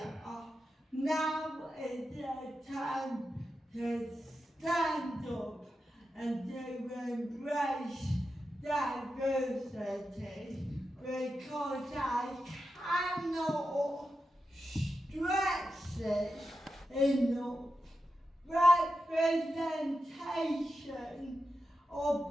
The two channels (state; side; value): normal; both; correlation 0.89